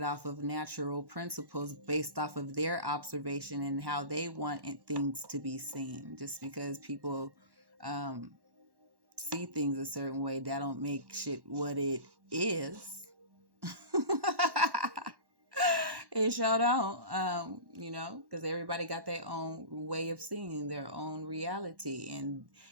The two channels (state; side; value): late; left; 1.1 ms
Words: off of natural principles based off of their observation and how they want things to be seen. Just because people see things a certain way, that don't make shit what it is. It sure don't, because everybody got their own way of seeing their own reality, and